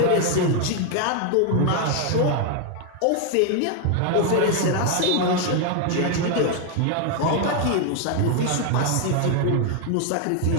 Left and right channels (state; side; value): different; both; correlation 0.01